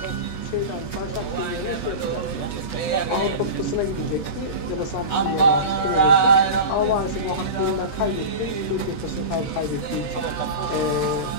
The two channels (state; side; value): late; right; 13 ms